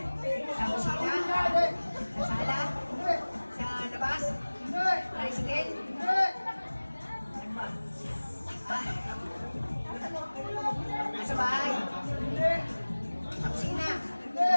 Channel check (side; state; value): both; inverted; correlation -1.00